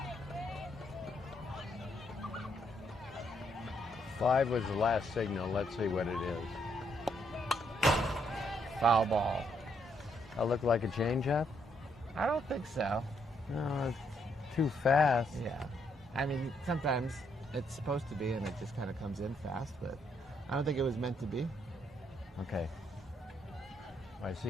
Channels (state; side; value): normal; both; correlation 0.74